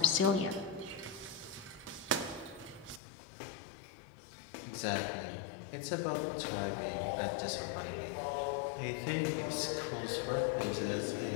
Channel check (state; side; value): drops out; right; at 3.0 s